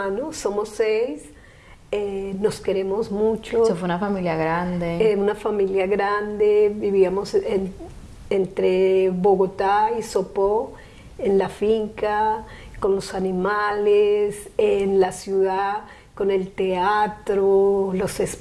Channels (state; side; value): identical; both; correlation 1.00